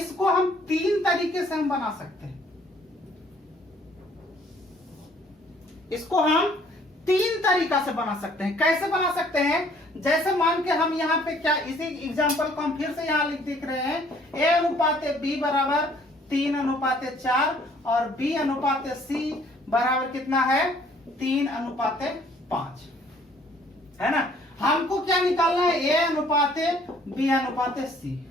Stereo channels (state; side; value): normal; both; correlation 0.60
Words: हम 3 तरीके से हम बना सकते हैं। इसको हम 3 तरीका से बना सकते हैं। कैसे बना सकते हैं? जैसे मान के हम यहाँ पे क्या, इसी एग्जांपल को हम फिर से यहाँ लिख रहे हैं, ए अनुपात बी बराबर 3:4 और बी अनुपात सी बराबर कितना है? 3:5, है ना। हमको क्या निकालना है? ए अनुपात बी अनुपात सी।